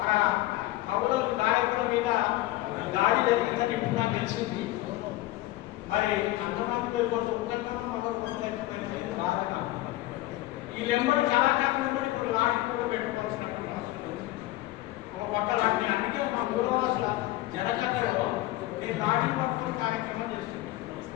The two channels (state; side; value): quieter; right; 17.1 dB